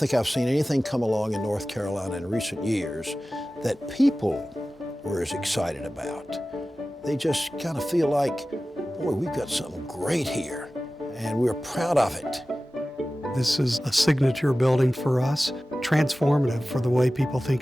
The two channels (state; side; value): normal; both; correlation 0.96